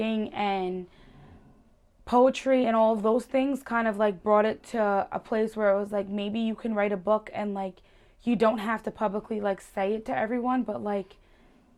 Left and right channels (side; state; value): both; identical; correlation 1.00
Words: and poetry and all of those things kind of like brought it to a place where it was like maybe you can write a book and like you don't have to publicly like say it to everyone, but like